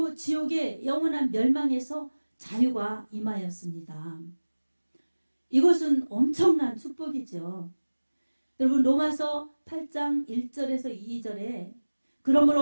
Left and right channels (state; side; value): inverted; both; correlation -1.00